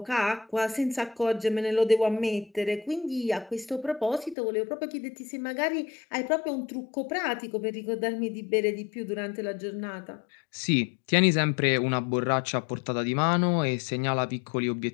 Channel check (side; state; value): right; drops out; at 4.4 s